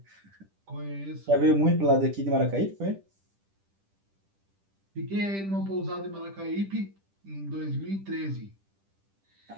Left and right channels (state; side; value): late; left; 10 ms